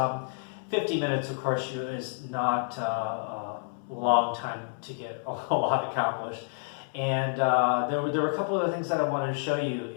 50 minutes, of course, is not a long time to get a lot accomplished. And there were a couple of things that I wanted to show you.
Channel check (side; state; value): right; silent; 58 dB below the other